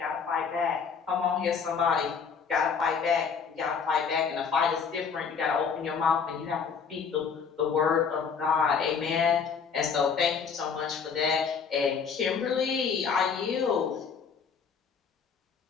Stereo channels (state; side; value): quieter; right; 6.1 dB